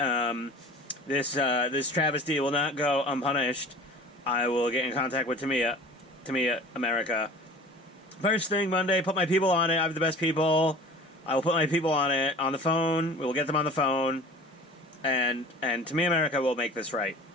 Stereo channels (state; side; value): normal; both; correlation 0.41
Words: This travesty will not go unpunished. I will get in contact with Tamiya, America. First thing Monday, put my people on it. I have the best people. I will put my people on it, on the phone. We will get them on the phone. And Tamiya America will make this right.